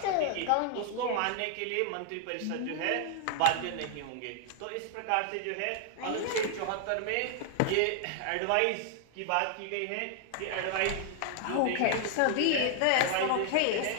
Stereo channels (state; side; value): different; both; correlation 0.00